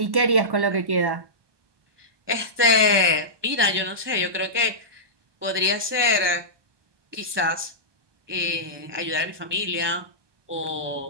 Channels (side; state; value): left; late; 1.2 ms